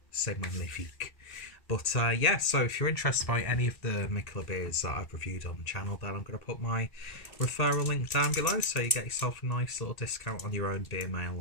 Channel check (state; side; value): late; right; 1.8 ms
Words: c'est magnifique. But yeah, so if you're interested by any of the Mikkeller beers that I've reviewed on the channel, then I'm going to put my referral link down below so you get yourself a nice little discount on your own beer mail